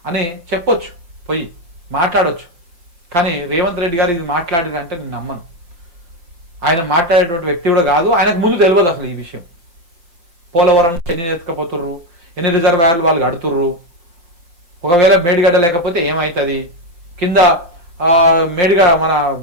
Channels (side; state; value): left; late; 5.7 ms